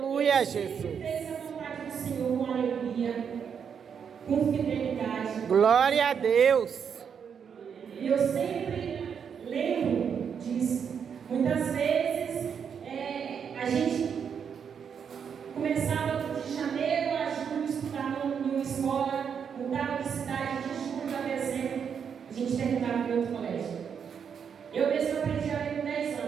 Ele Jesus. sempre fez a vontade do Senhor com alegria, com fidelidade. Glória a Deus. E eu sempre lembro disso. Muitas vezes a gente começava de janeiro a julho estudar em uma escola, mudava de cidade de julho a dezembro, a gente terminava em outro colégio. Eu mesmo aprendi a ler com 10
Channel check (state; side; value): quieter; left; 7.2 dB